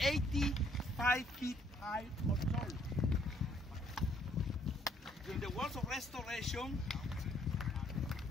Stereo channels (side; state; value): both; normal; correlation 0.66